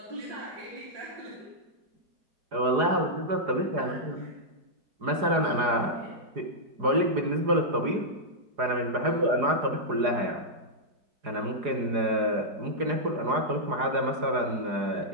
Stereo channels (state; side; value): late; left; 4.8 ms